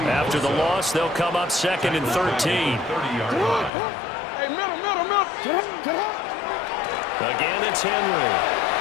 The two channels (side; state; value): right; drops out; at 3.7 s